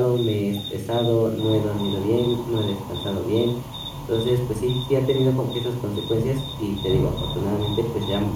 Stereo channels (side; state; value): both; identical; correlation 1.00